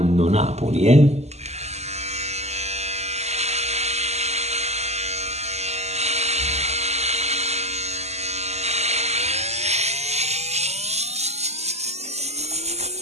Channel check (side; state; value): left; late; 0.32 ms